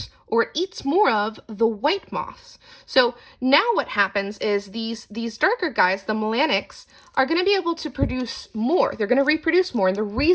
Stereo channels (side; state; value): both; identical; correlation 1.00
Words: or eats more of the white moths. So now what happens is these darker guys, the melanics, are going to be able to produce more. They're going to reproduce more. And the